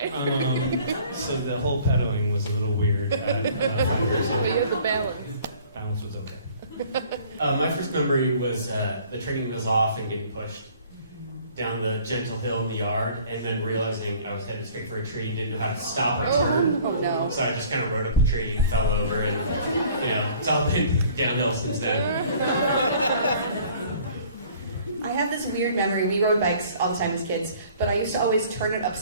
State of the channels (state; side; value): inverted; both; correlation -0.53